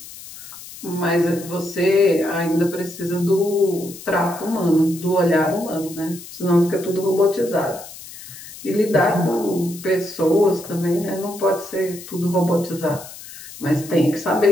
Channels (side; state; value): left; noise; hiss, 15 dB below the sound